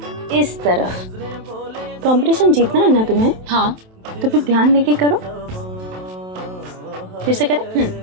इस तरफ। कंपटीशन जीतना है ना तुम्हें? हाँ। तो फिर ध्यान देके करो। फिर से करें?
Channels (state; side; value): late; left; 27 ms